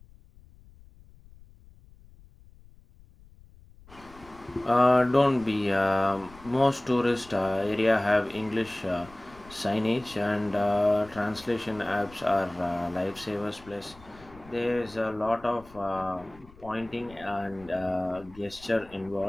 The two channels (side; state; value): left; noise; rumble, 23 dB below the sound